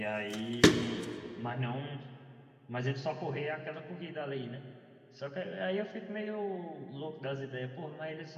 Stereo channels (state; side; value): identical; both; correlation 1.00